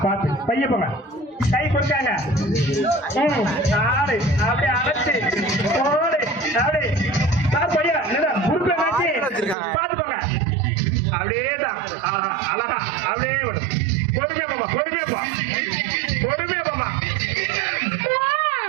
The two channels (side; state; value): left; drops out; at 9.6 s